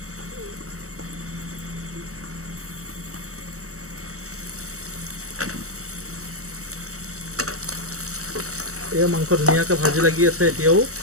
এয়া মাংস ধুনীয়াকৈ ভাজি লাগি আছে। এতিয়াও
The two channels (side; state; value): left; late; 0.65 ms